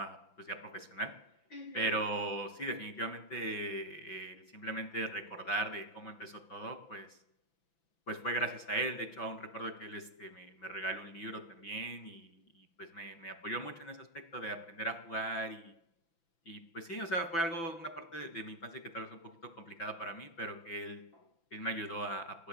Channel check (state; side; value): late; right; 6.0 ms